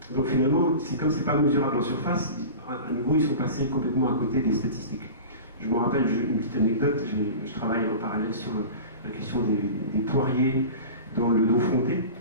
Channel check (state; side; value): inverted; both; correlation -0.34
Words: Donc finalement, c'est comme c'est pas mesurable en surface, à nouveau, ils sont passés complètement à côté des statistiques. Je me rappelle une petite anecdote, je travaille en parallèle sur la question des poiriers dans le dos fronté,